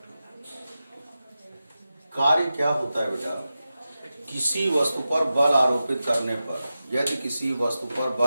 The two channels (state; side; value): inverted; both; correlation -0.92